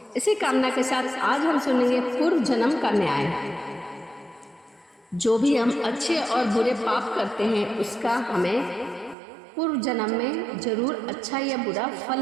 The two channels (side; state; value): left; drops out; at 9.2 s